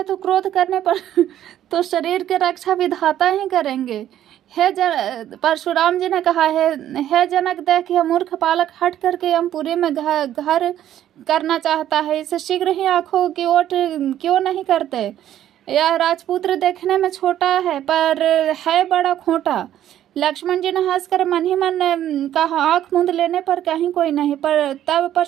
तो क्रोध करने पर तो शरीर की रक्षा विधाता ही करेंगे। परशुराम जी ने कहा है, हे जनक, देख यह मूर्ख बालक हट करके यमपुरी में घर करना चाहता है, इसे शीघ्र ही आंखों की ओट क्यों नहीं करते। यह राजपुत्र देखने में छोटा है पर है बड़ा खोटा। लक्ष्मण जी ने हंसकर मन ही मन कहा, आंख मूंद लेने पर कहीं कोई नहीं। पर तब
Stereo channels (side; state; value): left; quieter; 11.7 dB